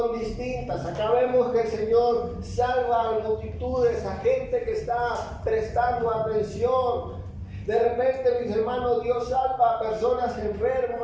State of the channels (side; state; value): both; identical; correlation 1.00